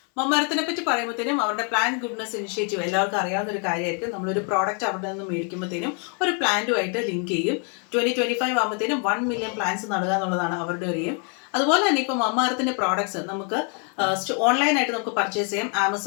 മമ്മ എർത്തിനെ പറ്റി പറയുമ്പോഴത്തേനും അവരുടെ പ്ലാന്റ് ഗുഡ്നെസ് ഇനിഷ്യേറ്റീവ് എല്ലാവർക്കും അറിയാവുന്ന ഒരു കാര്യമായിരിക്കും. നമ്മളൊരു പ്രോഡക്റ്റ് അവിടെ നിന്ന് മേടിക്കുമ്പോഴത്തേനും ഒരു പ്ലാന്റുമായിട്ട് ലിങ്ക് ചെയ്യും. 2025 ആകുമ്പോഴത്തേനും 1 മില്യൺ പ്ലാന്റ്സ് നടുക എന്നുള്ളതാണ് അവരുടെ ഒരു എയിം. അതുപോലെ തന്നെ ഇപ്പോൾ മമ്മ എർത്തിൻ്റെ പ്രോഡക്ട്സ് നമുക്ക് ഓൺലൈനായിട്ട് നമുക്ക് പർച്ചേസ് ചെയ്യാം.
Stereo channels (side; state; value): right; quieter; 39.4 dB